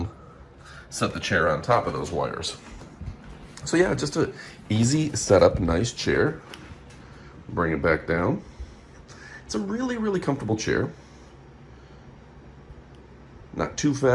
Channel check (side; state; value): both; identical; correlation 1.00